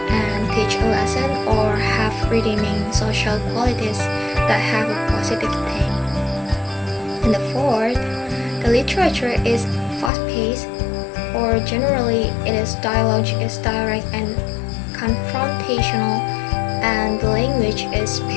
and teach a lesson or have redeeming social qualities that have a positive theme. And the fourth, the literature is fast-paced, or generally it is dialogue is direct and confrontational, and the language is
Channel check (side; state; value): right; drops out; at 10.1 s